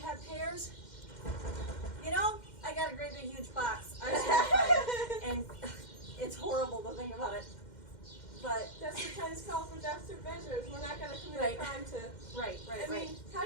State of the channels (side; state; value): right; late; 2.1 ms